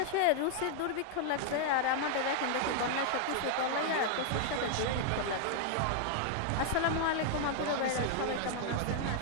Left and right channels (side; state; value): both; different; correlation 0.00